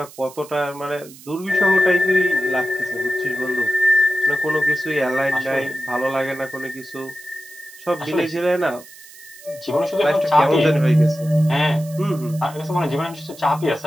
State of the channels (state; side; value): noise; right; hiss, 20 dB below the sound